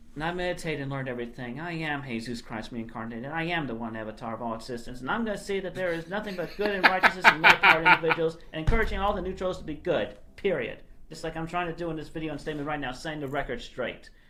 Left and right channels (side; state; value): both; identical; correlation 1.00